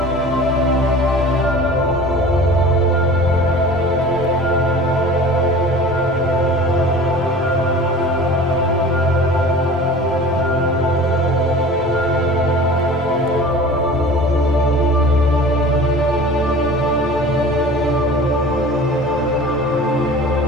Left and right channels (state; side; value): normal; both; correlation 0.41